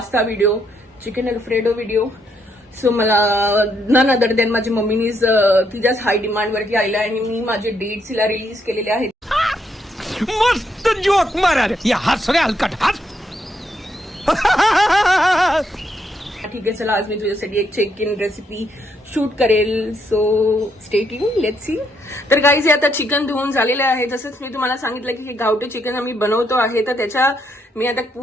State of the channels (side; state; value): both; normal; correlation 0.75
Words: video, chicken alfredo video. So मला नन अदर दॅन माझ्या मम्मीनीच तिच्याच हाय डिमांड वरती आलेला आणि मी माझे डेट्स हिला रिलीज केलेले आहेत. मस्त जोक मारा रे, या हस रे हलकट हस. ठीक आहे, चला आज मी तुझ्यासाठी एक चेक इन रेसिपी शूट करेल. So stay tune, let's see. तर गाईज हे आता चिकन धुवून झालेलं आहे. जसंच मी तुम्हाला सांगितलं की हे गावठी चिकन आम्ही बनवतो आहे, तर त्याच्या मी आता